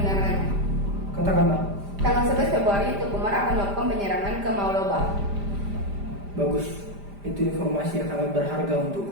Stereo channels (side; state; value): left; late; 5.0 ms